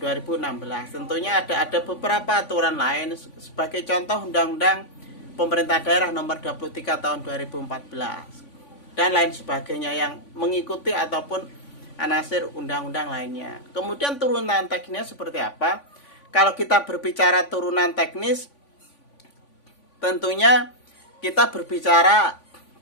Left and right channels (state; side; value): late; right; 3.5 ms